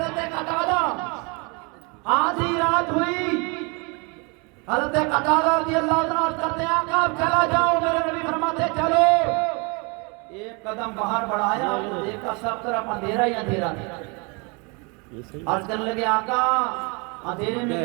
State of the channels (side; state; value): left; quieter; 31.2 dB